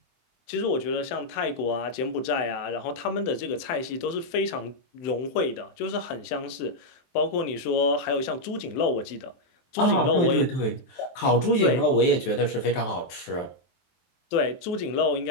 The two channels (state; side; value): late; right; 23 ms